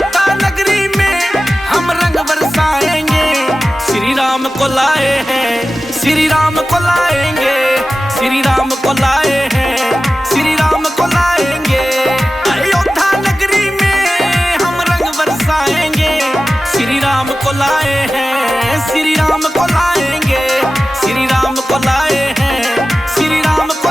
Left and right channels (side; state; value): both; normal; correlation 0.95